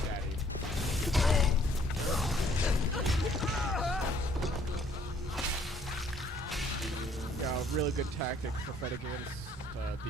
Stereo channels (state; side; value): normal; both; correlation 0.62